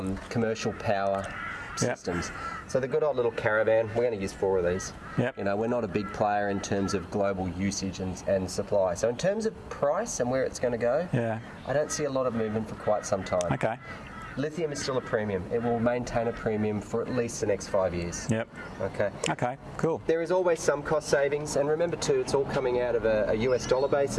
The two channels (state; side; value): identical; both; correlation 1.00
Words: commercial power systems. So the good old little caravan, we're going to use 4 of these. You know, we're not a big player in terms of global usage and supply. So in terms of price and where it's going to go, I don't see a lot of movement for quite some time. Okay. Lithium is still a premium. It will maintain a premium for at least the next 5 years. Okay. Okay, cool. There is always some cost savings, and remember too, it's all coming out of a US dollar